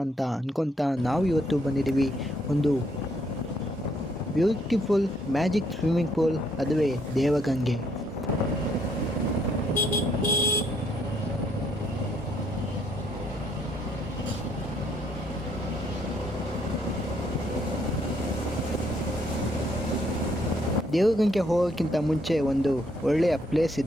ಅಂತ ಅನ್ಕೊತಾ ನಾವು ಇವತ್ತು ಬಂದಿದ್ದೀವಿ ಒಂದು ಬ್ಯೂಟಿಫುಲ್ ಮ್ಯಾಜಿಕ್ ಸ್ವಿಮ್ಮಿಂಗ್ ಪೂಲ್, ಅದುವೇ ದೇವಗಂಗೆ. ದೇವಗಂಗೆ ಹೋಗೋಕ್ಕಿಂತ ಮುಂಚೆ ಒಂದು ಒಳ್ಳೆಯ ಪ್ಲೇಸ್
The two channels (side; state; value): both; normal; correlation 0.70